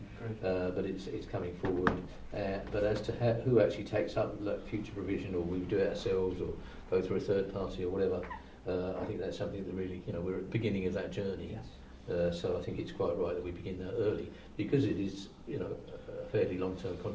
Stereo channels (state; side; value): identical; both; correlation 1.00